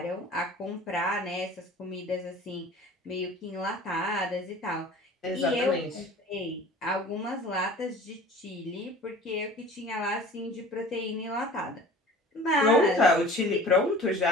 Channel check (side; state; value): both; normal; correlation 0.44